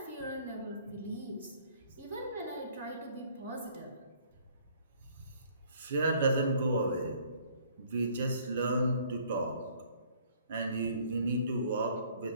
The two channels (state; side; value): inverted; both; correlation -0.59